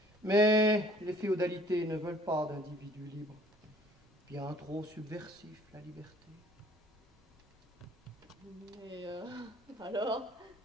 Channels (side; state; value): both; normal; correlation 0.56